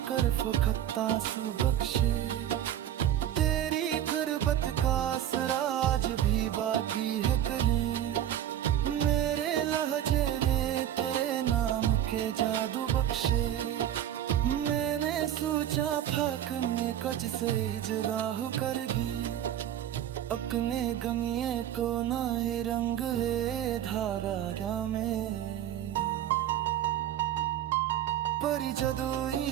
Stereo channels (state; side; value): quieter; left; 11.1 dB